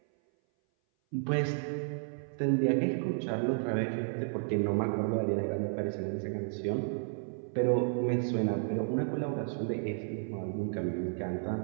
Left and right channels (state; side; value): silent; left; 56 dB below the other